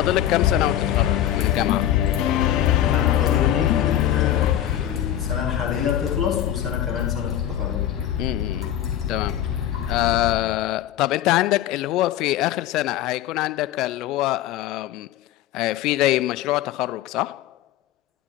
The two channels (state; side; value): quieter; right; 11.7 dB